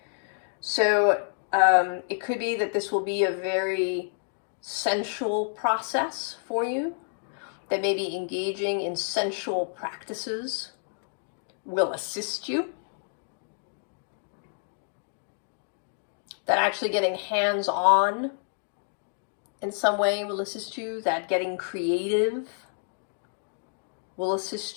So it could be that this will be a very sensual process for you, that maybe engaging in sensual practices will assist you, that actually getting hands-on in some way will assist you, that getting creative will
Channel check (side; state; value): right; silent; digital silence